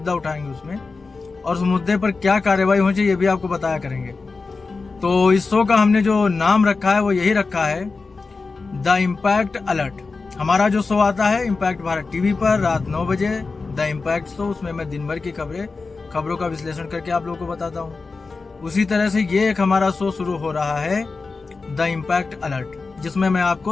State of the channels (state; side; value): quieter; right; 4.2 dB